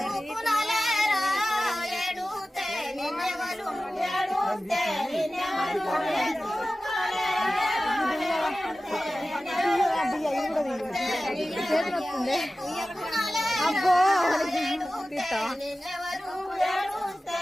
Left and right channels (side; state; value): both; normal; correlation 0.95